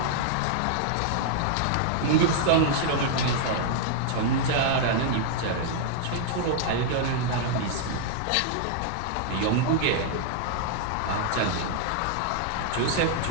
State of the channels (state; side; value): different; both; correlation -0.01